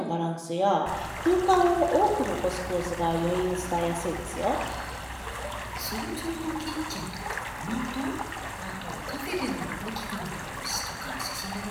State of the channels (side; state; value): both; identical; correlation 1.00